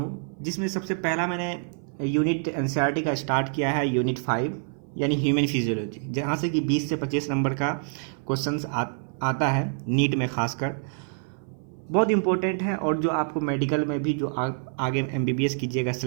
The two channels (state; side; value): silent; left; 57 dB below the other